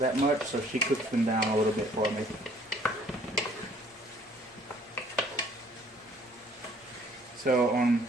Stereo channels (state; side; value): normal; both; correlation 0.59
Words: much, so she cooks them down a little bit for me. So on